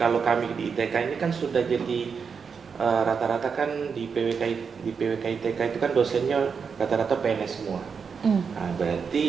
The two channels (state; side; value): quieter; left; 6.0 dB